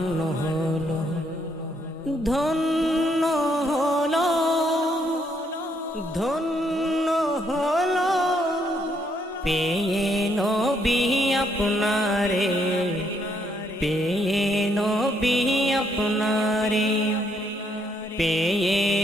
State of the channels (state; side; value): normal; both; correlation 0.72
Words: হলো, ধন্য হলো, ধন্য হলো পেয়ে নবী আপনারে, পেয়ে নবী আপনারে, পেয়ে